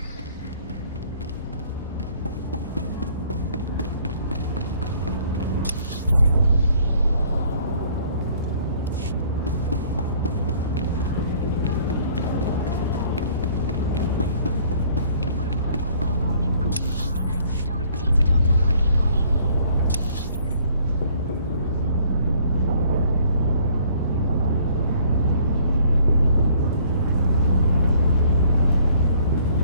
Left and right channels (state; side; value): inverted; both; correlation -0.59